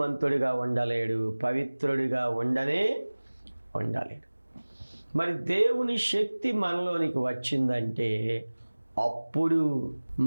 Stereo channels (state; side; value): inverted; both; correlation -1.00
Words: ఉండలేడు, పవిత్రుడిగా ఉండలేడు. మరి దేవుని శక్తి మనలోనికి వచ్చిందంటే అప్పుడు